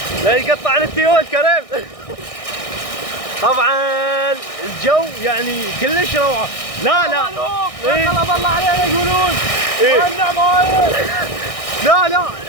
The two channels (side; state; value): right; late; 1.6 ms